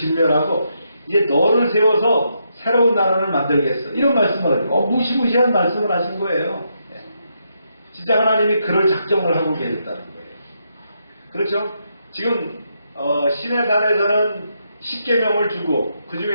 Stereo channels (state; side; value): inverted; both; correlation -0.79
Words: 이제 너를 세워서 새로운 나라를 만들겠어. 이런 말씀을 무시무시한 말씀을 하신 거예요. 진짜 하나님이 그럴 작정을 하고 계셨다는 거예요. 그렇죠? 지금 시내산에서는 10계명을 주고 그